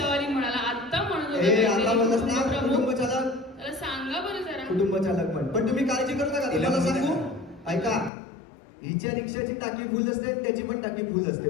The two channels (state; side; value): drops out; right; at 8.1 s